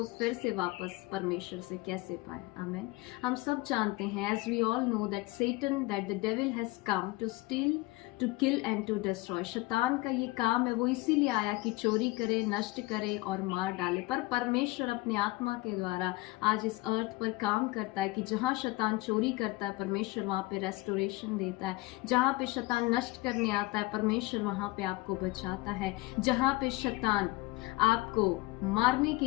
फिर से वापस परमेश्वर से कैसे पाए। आमेन। हम सब जानते हैं, as we all know that Satan, that the devil has come to steal, to kill and to destroy. शैतान का ये काम है, वो इसीलिए आया कि चोरी करे, नष्ट करे और मार डाले। पर परमेश्वर अपनी आत्मा के द्वारा आज इस अर्थ पर काम करता है कि जहाँ शैतान चोरी करता है, परमेश्वर वहाँ पे रेस्टोरेशन देता है। जहाँ पे शैतान नष्ट करने आता है, परमेश्वर वहाँ पे आपको बचाता है। जहाँ पे शैतान आपको मारने के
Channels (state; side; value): quieter; right; 21.1 dB